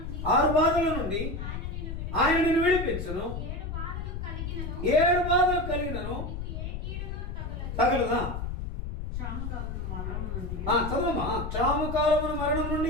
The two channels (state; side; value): noise; left; rumble, 5 dB below the sound